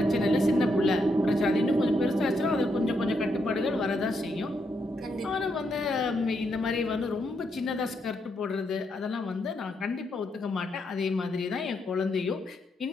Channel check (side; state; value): both; normal; correlation 0.79